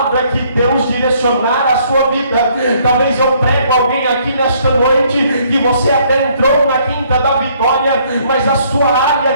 que Deus direcionar a sua vida. Talvez eu prego alguém aqui nesta noite que você até entrou na Quinta da Vitória, mas a sua área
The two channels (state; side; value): inverted; both; correlation -0.64